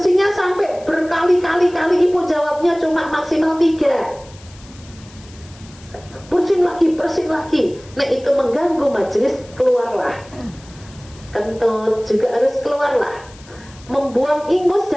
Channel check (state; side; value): noise; left; hiss, 23 dB below the sound